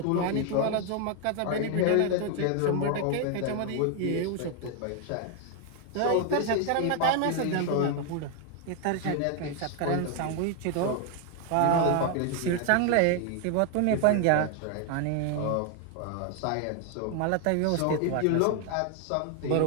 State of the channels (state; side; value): different; both; correlation 0.00